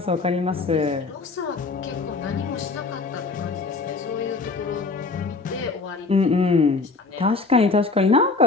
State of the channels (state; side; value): quieter; right; 3.9 dB